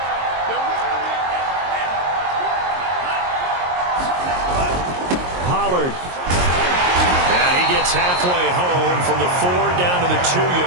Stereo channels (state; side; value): late; left; 22 ms